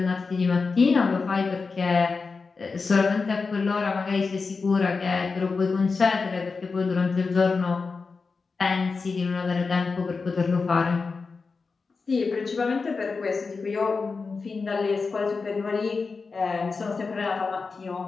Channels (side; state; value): right; quieter; 4.5 dB